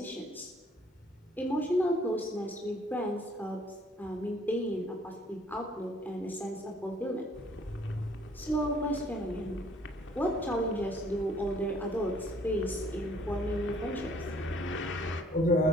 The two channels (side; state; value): both; normal; correlation 0.60